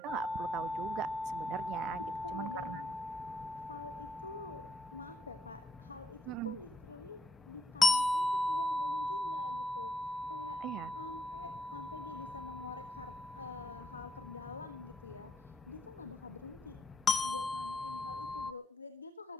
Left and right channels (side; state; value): both; normal; correlation 0.77